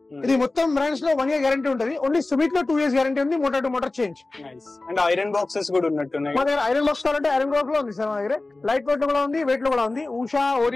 ఇది మొత్తం బ్రాండ్స్ లో 1 year గ్యారంటీ ఉంటుంది. ఓన్లీ సుమిత్ లో 2 years గ్యారంటీ ఉంది, motor to motor change. And iron boxes కూడా ఉన్నట్టున్నాయి మా దగ్గర. ఐరన్ బాక్స్ కావాలంటే ఐరన్ బాక్స్ లో ఉంది సార్ మా దగ్గర. లైట్ వెయిట్ లో కూడా ఉంది, వెయిట్ లో కూడా ఉంది. ఉషా,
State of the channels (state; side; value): quieter; right; 3.1 dB